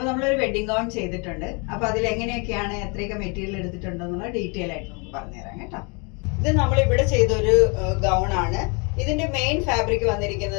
നമ്മളൊരു വെഡിങ് ഗൗൺ ചെയ്തിട്ടുണ്ട്. അപ്പൊ അതിൽ എങ്ങനെയൊക്കെയാണ് എത്രയൊക്കെ മെറ്റീരിയൽ എടുത്തിട്ടുണ്ടെന്നുള്ള ഡീറ്റെയിൽ ആയിട്ട് നമുക്ക് പറഞ്ഞുതരാം കേട്ടോ. ഇത് നമ്മൾ ഇവിടെ ചെയ്തൊരു ഗൗൺ ആണ്. ഇതിന്റെ മെയിൻ ഫാബ്രിക്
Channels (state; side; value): quieter; right; 32.3 dB